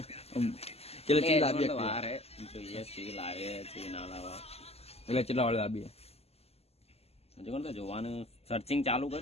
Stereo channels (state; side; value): late; right; 0.29 ms